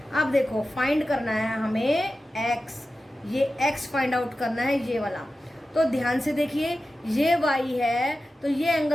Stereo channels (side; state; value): both; normal; correlation 0.93